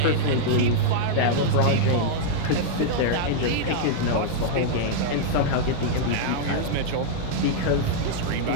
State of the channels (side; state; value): both; different; correlation -0.01